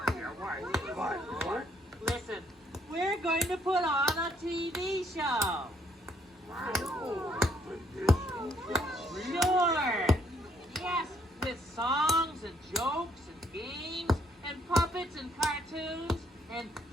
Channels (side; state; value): both; normal; correlation 0.68